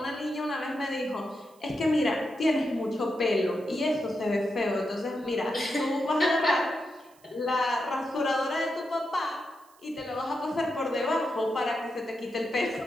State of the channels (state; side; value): noise; right; hiss, 29 dB below the sound